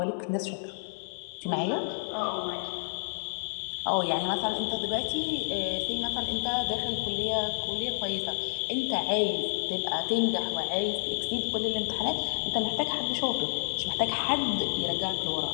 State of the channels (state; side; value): silent; right; digital silence